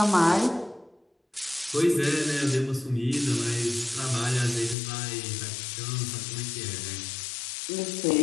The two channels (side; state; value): right; drops out; at 4.8 s